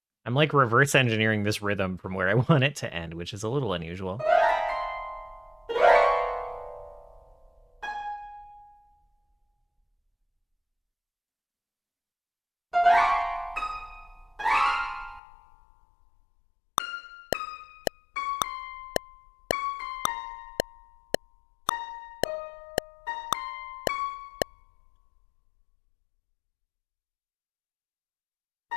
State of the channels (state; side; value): drops out; right; at 15.2 s